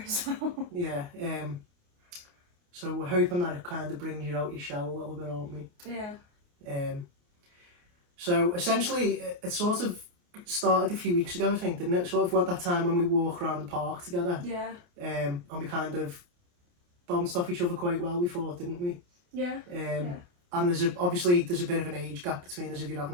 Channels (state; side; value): late; left; 28 ms